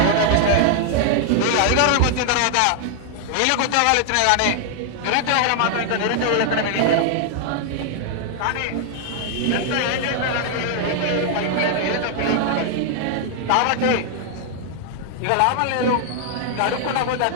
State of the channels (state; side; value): different; both; correlation 0.00